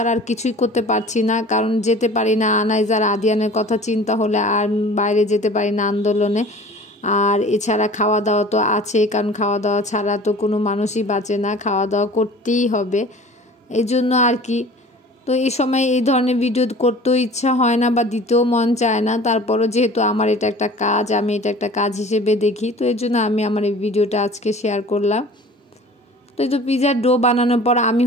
আর কিছুই করতে পারছি না, কারণ যেতে পারি না। আনাইজ আর আদিয়ানের কথা চিন্তা হলে আর বাইরে যেতে পারি না আন্দোলনে। আর এছাড়া খাওয়া দাওয়া তো আছে, কারণ খাওয়া দাওয়া ছাড়া তো কোনো মানুষই বাঁচে না, খাওয়া দাওয়া করতেই হবে। এই জন্য আর কি। তো এই সময় এই ধরনের ভিডিও করতেও ইচ্ছা হয় না বা দিতেও মন চায় না। তারপরও যেহেতু আমার এটা একটা কাজ, আমি এটা একটা কাজ হিসেবে দেখি, তো এর জন্য আমি আমার এই ভিডিওটা আজকে শেয়ার করলাম। তো এই তো পিৎজার ডো বানানোর পর আমি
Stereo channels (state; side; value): normal; both; correlation 0.44